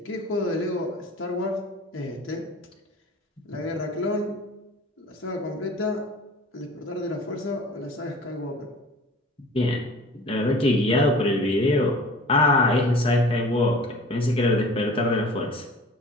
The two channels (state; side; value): normal; both; correlation 0.44